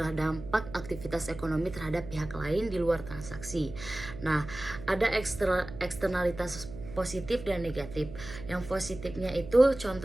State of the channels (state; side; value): noise; right; hum, 13 dB below the sound